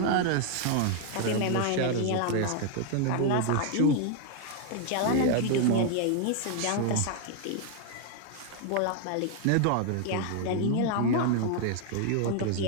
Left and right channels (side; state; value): both; different; correlation 0.00